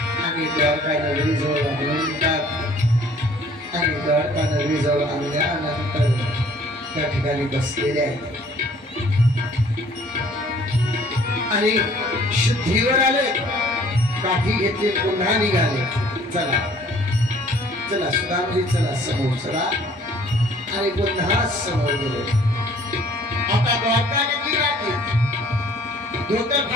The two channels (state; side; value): normal; both; correlation 0.56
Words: आणि द्वारका नगरीजवळ आणतात. आणि द्वारका नगरीजवळ आणल्यानंतर त्या ठिकाणी बसलेले आहेत आणि शुद्धीवर आले, काठी घेतली, पुन्हा निघाले. चला चला सुदामजी चला समोर चला आणि पुन्हा समोर गेले. आता द्वारका नगरी राहते, धोतर